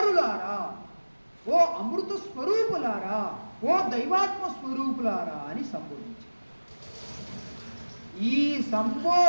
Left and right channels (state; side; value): inverted; both; correlation -1.00